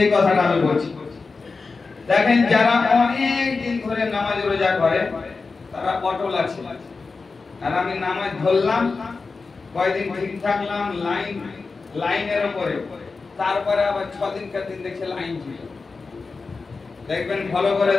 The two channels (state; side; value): quieter; right; 4.3 dB